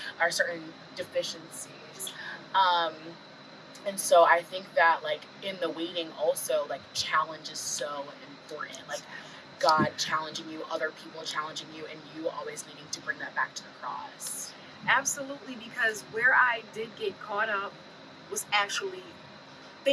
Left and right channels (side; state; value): both; identical; correlation 1.00